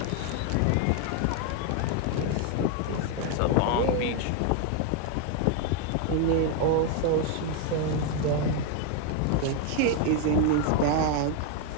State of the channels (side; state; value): both; different; correlation 0.01